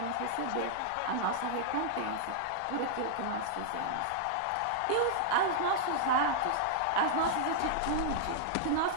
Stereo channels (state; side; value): different; both; correlation -0.01